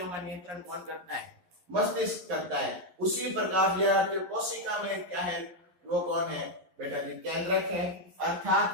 का नियंत्रण कौन करता है? मस्तिष्क करता है। उसी प्रकार विद्यार्थियों कोशिका में क्या है? वो कौन है बेटा जी? केंद्रक है।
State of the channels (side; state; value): left; late; 11 ms